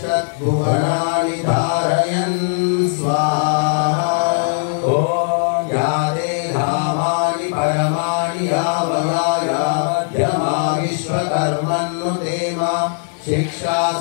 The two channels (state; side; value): silent; right; 60 dB below the other